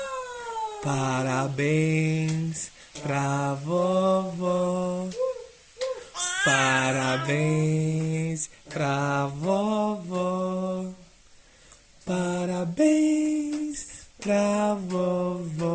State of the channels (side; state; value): both; identical; correlation 1.00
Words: Parabéns pra vovó. Parabéns pra vovó. Parabéns pra